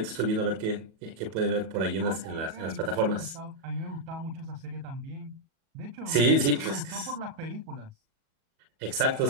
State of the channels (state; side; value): late; left; 37 ms